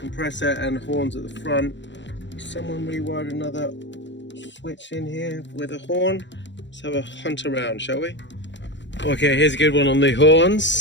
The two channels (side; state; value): right; late; 0.53 ms